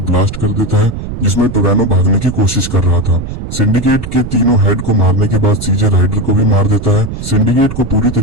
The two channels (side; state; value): right; noise; rumble, 8 dB below the sound